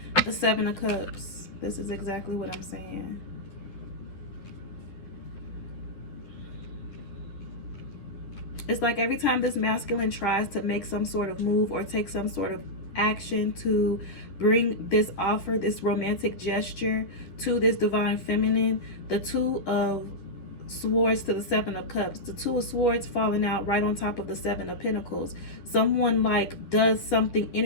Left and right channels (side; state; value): right; late; 11 ms